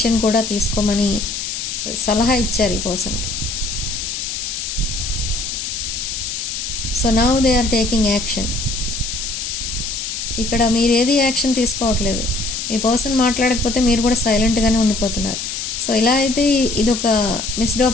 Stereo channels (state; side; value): noise; left; hiss, 4 dB below the sound